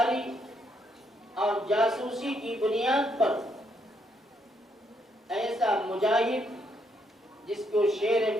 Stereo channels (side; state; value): both; normal; correlation 0.75